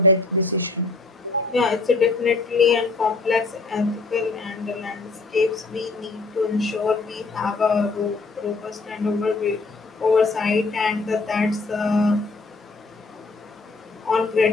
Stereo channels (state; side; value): quieter; right; 3.7 dB